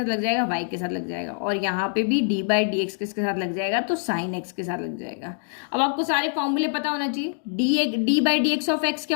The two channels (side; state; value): right; silent; 62 dB below the other